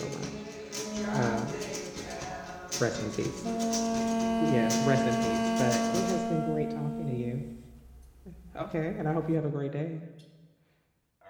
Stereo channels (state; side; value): identical; both; correlation 1.00